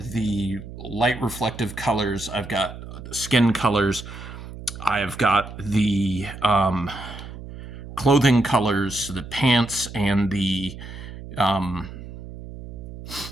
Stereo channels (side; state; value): right; noise; hum, 12 dB below the sound